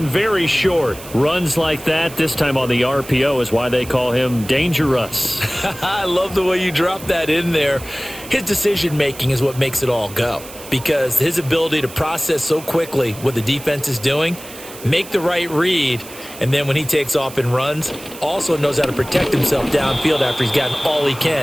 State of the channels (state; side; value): noise; right; hiss, 16 dB below the sound